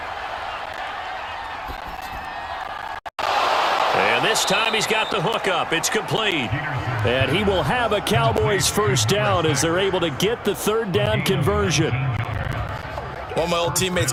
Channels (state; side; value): identical; both; correlation 1.00